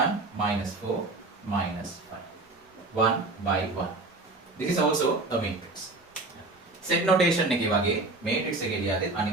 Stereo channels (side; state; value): left; quieter; 3.1 dB